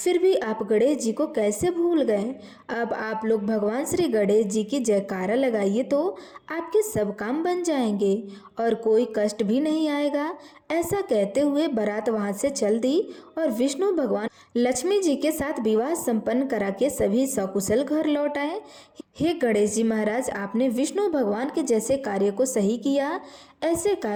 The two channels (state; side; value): identical; both; correlation 1.00